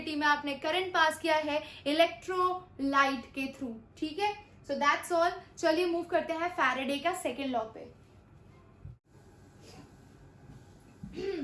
में आपने करंट पास किया है इलेक्ट्रोलाइट के थ्रू, ठीक है। सो दैट्स ऑल। चलिए मूव करते हैं फैराडे का सेकेंड लॉ पे।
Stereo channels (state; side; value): identical; both; correlation 1.00